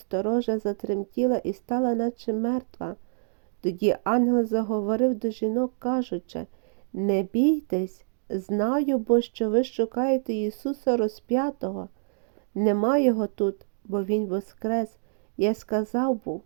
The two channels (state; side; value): silent; left; digital silence